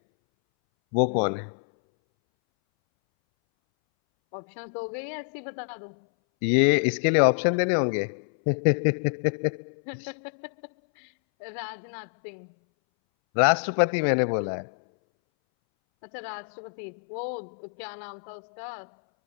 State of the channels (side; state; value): right; silent; 60 dB below the other